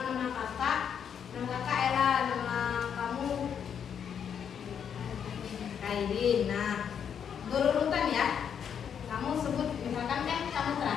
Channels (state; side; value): quieter; right; 7.9 dB